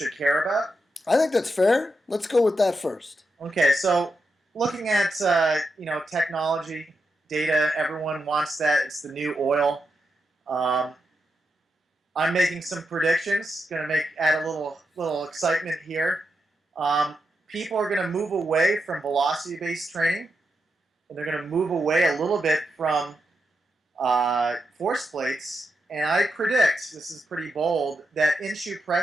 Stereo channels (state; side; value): normal; both; correlation 0.86